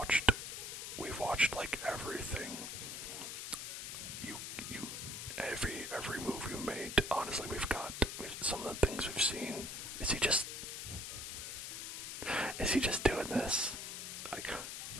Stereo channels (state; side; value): noise; left; hiss, 6 dB below the sound